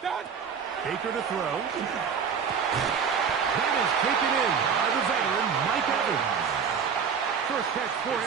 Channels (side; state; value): left; quieter; 6.6 dB